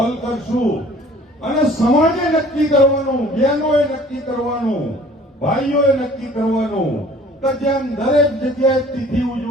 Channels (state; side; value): normal; both; correlation 0.51